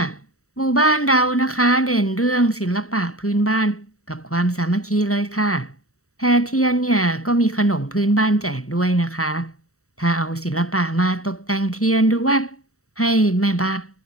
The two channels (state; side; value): late; right; 0.64 ms